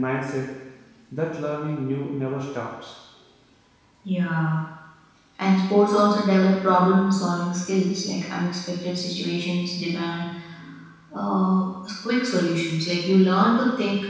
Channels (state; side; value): identical; both; correlation 1.00